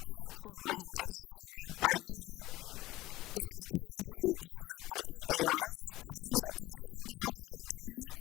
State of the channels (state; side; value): quieter; right; 17.8 dB